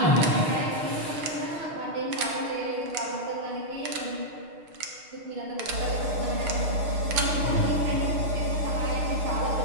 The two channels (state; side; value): late; left; 6.4 ms